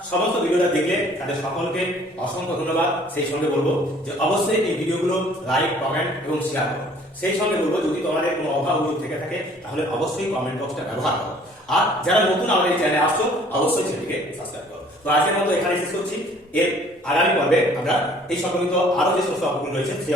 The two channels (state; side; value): normal; both; correlation 0.55